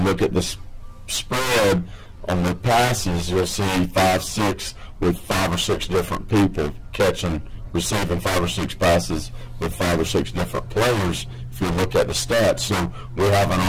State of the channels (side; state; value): both; identical; correlation 1.00